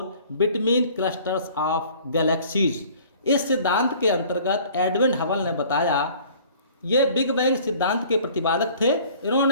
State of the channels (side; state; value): both; inverted; correlation -0.51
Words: between clusters of galaxies। इस सिद्धांत के अंतर्गत Edwin Hubble ने बताया, ये big bang सिद्धांत के प्रतिपादक थे।